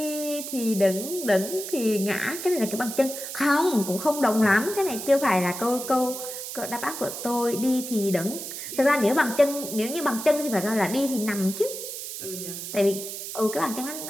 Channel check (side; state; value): right; noise; hiss, 8 dB below the sound